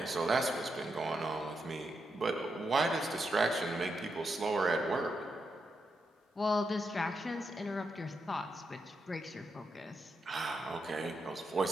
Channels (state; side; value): normal; both; correlation 0.84